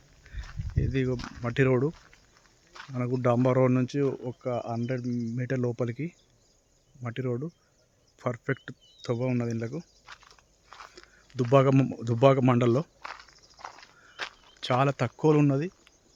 ఇది మట్టి రోడ్డు. మనకు డాంబర్ రోడ్ నుంచి ఒక 100 మీటర్ లోపలికి మట్టి రోడ్డు. పర్ఫెక్ట్ తవ్వ ఉన్నది. ఇండ్లకు దుబ్బాక మండల్లో చాలా తక్కువలో ఉన్నది.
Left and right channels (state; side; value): identical; both; correlation 1.00